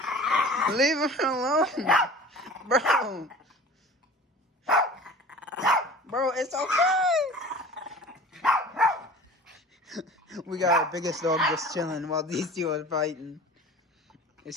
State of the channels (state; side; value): normal; both; correlation 0.41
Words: Leave him alone, bro. Bro, it's okay. We got our biggest dog just chilling while these two are fighting.